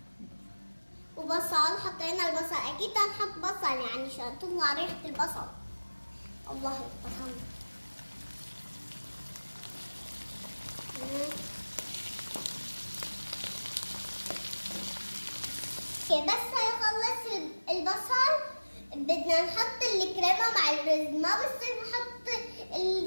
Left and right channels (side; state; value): both; inverted; correlation -1.00